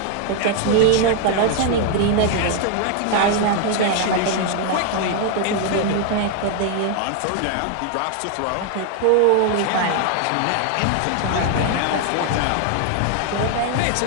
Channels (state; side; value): different; both; correlation 0.00